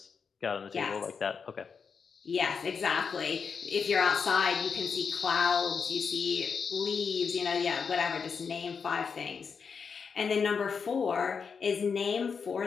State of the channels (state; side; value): quieter; right; 5.9 dB